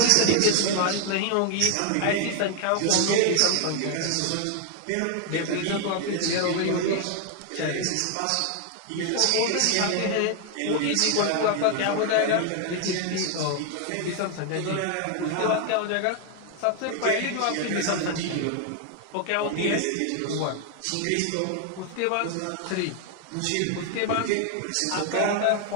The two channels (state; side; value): different; both; correlation 0.00